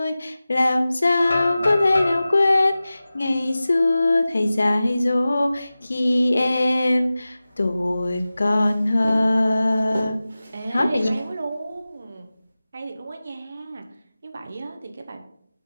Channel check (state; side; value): inverted; both; correlation -0.96